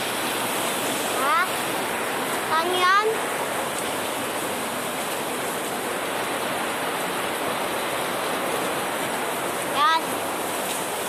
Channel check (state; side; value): identical; both; correlation 1.00